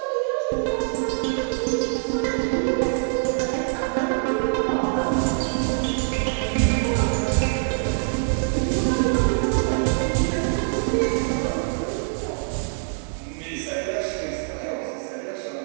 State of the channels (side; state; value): left; silent; 63 dB below the other